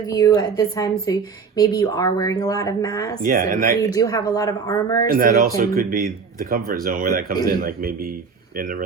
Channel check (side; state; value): left; quieter; 5.5 dB